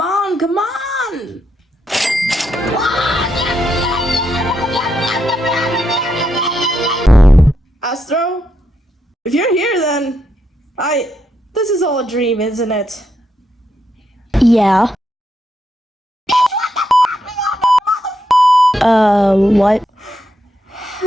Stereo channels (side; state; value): both; normal; correlation 0.81